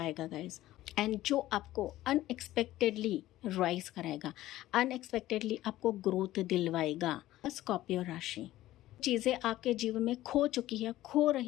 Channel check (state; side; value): quieter; right; 15.3 dB